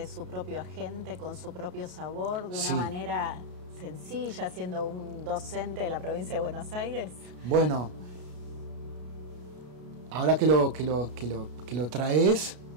su propio agente con su propio sabor de una Sí. manera sencilla, siendo un docente de la provincia de Buenos Aires? Bueno, ahora que lo traes,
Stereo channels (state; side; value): late; left; 33 ms